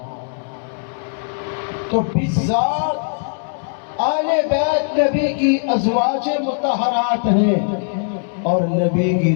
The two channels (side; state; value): right; silent; digital silence